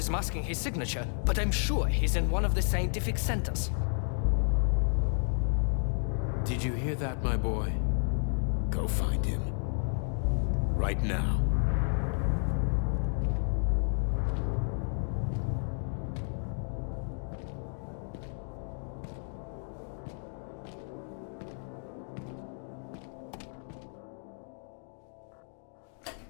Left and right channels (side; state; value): right; silent; 57 dB below the other